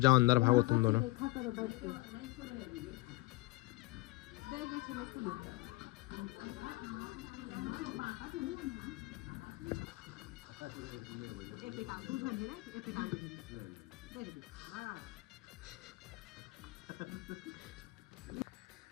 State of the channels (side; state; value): right; quieter; 21.6 dB